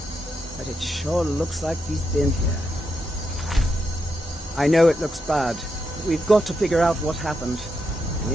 but it sure looks like he's been here. I know it looks bad, but we've got to figure out what happened. And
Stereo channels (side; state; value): both; normal; correlation 0.84